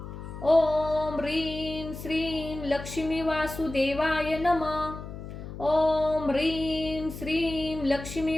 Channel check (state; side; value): noise; left; hum, 10 dB below the sound